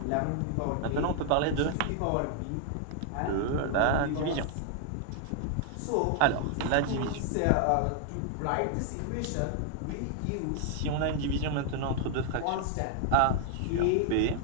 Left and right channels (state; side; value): different; both; correlation 0.00